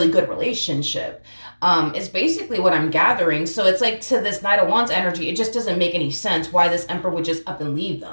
good relationship. Is basically what I'm gathering. So it's like, to this Knight of Wands energy, it just doesn't make any sense why this Emperor would just up and leave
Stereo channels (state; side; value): inverted; both; correlation -1.00